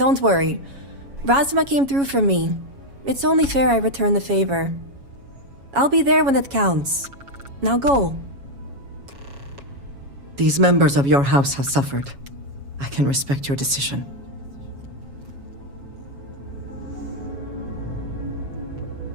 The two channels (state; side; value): late; left; 7.2 ms